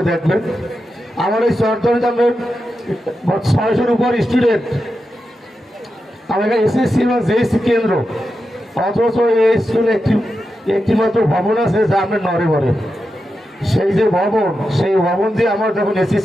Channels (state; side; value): normal; both; correlation 0.89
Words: দেখবেন। আমার এই চরদ্বারিতে আমরা 600-র উপর স্টুডেন্ট, আমাদের এসএসসি এবং জেএসসি কেন্দ্র, অথচ এই স্কুলে একটি মাত্র ভবন আছে যা আমরা নড়ে বলে। সেই যে ভবন, সেই ভবন দিয়ে আমার যখন